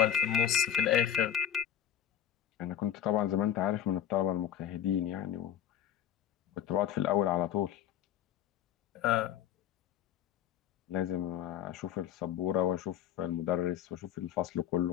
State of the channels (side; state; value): right; quieter; 10.4 dB